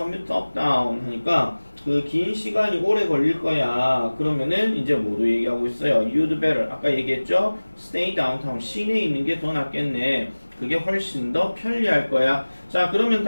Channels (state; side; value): inverted; both; correlation -1.00